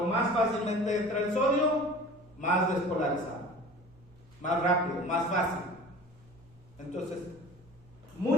más fácilmente entra el sodio, más despolarizado, más rápido, más fácil. Entonces,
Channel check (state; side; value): noise; right; hum, 27 dB below the sound